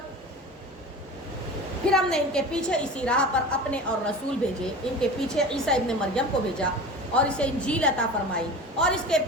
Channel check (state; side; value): normal; both; correlation 0.34